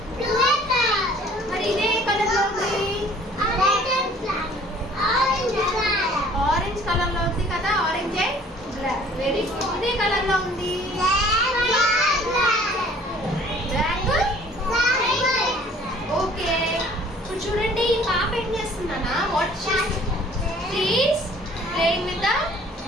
మరి ఇదే కలర్ లో ఉంది? ఆరెంజ్ కలర్ లో ఉంది కదా, ఆరెంజ్. Very good. ఇదే కలర్ లో ఉంది? ఓకే. ఇప్పుడు చూడండి, ఈ పాప ఏం చేస్తుందన్నా? What she's playing with the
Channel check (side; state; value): both; normal; correlation 0.53